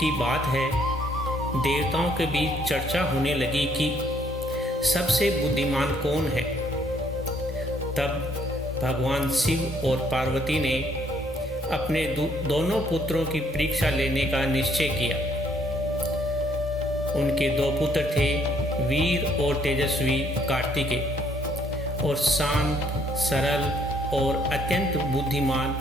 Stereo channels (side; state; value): both; normal; correlation 0.66